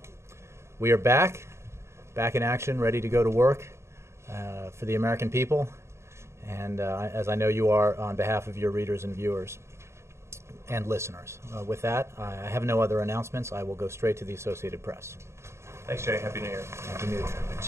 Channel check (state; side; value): late; left; 0.13 ms